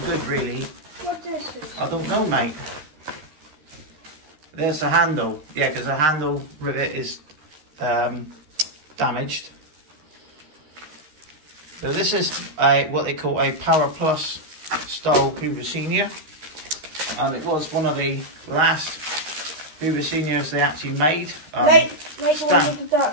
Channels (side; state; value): left; late; 13 ms